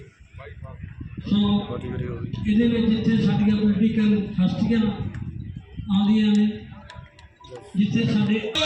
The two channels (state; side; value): identical; both; correlation 1.00